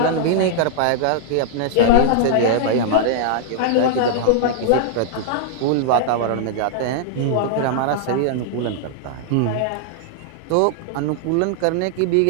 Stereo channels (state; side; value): different; both; correlation -0.01